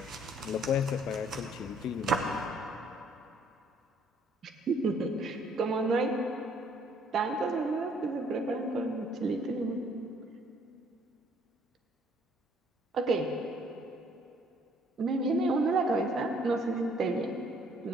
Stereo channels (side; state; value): both; normal; correlation 0.62